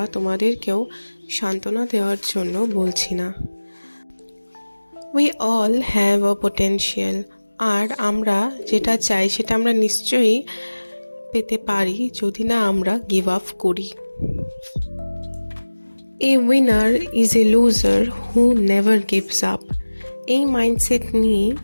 তোমাদেরকেও সান্ত্বনা দেওয়ার জন্য বলছি না। We all have a potential. আর আমরা যেটা চাই সেটা আমরা নিশ্চয়ই পেতে পারি যদি না আমরা গিভ আপ করি। এ winner is a loser who never gives up. এই মাইন্ডসেট নিয়ে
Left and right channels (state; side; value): inverted; both; correlation -1.00